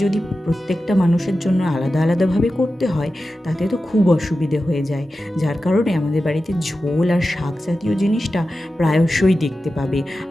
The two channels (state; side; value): normal; both; correlation 0.93